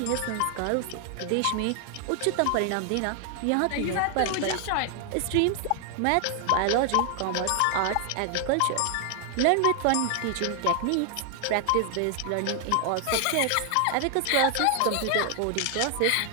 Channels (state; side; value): different; both; correlation 0.00